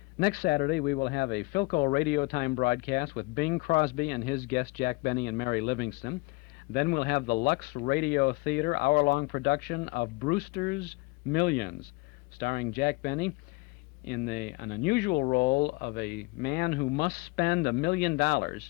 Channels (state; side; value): quieter; right; 25.2 dB